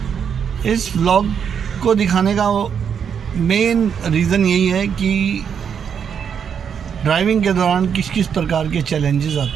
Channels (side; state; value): left; quieter; 7.4 dB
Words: इस व्लॉग को दिखाने का मेन रीज़न यही है कि ड्राइविंग के दौरान किस किस प्रकार के चैलेंजेस